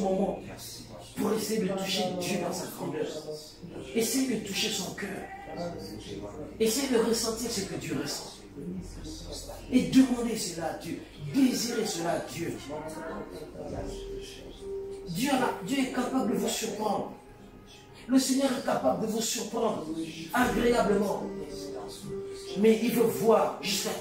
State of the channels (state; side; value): identical; both; correlation 1.00